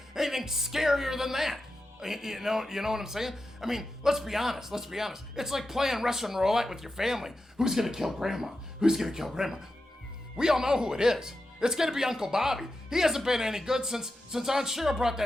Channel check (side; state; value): both; normal; correlation 0.90